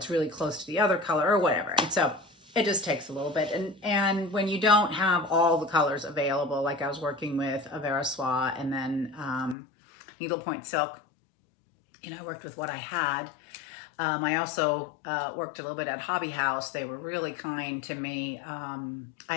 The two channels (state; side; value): drops out; right; at 9.6 s